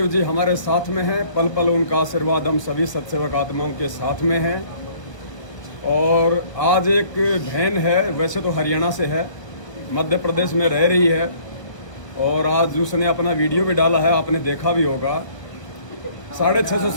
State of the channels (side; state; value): right; late; 1.0 ms